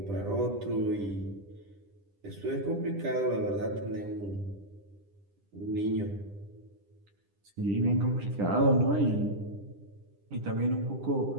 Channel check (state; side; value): late; left; 10 ms